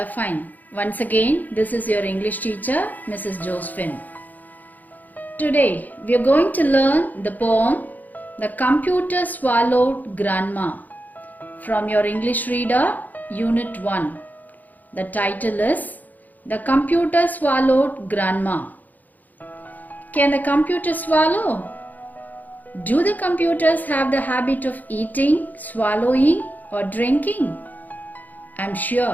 fine. Once again, this is your English teacher, Mrs. Josephine. Today, we are going to learn the poem The Computer Swallowed Grandma from your English Reader, Unit 1. The title is The Computer Swallowed Grandma. Can the computer swallow? Do the computers have the habit of eating, swallowing, or drinking? I'm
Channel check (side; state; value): right; late; 0.082 ms